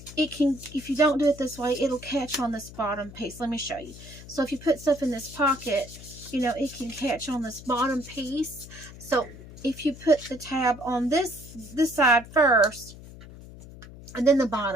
it can, if you don't do it this way, it'll catch on this bottom piece. Let me show you. So if you put stuff in this pocket, you know, it can catch on this bottom piece. So if you put the tab on this side first, and then the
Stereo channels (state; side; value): noise; left; hum, 16 dB below the sound